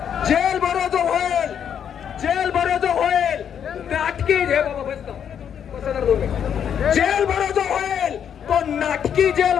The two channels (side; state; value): right; quieter; 8.5 dB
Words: जेल भरो जो होईल, जेल भरो जो होईल, नाटकी जेल भरो जो होईल, तो नाटकी जेल